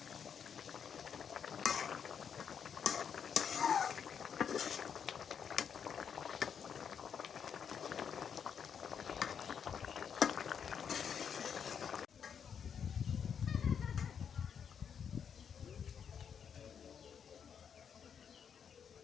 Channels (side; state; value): right; quieter; 7.4 dB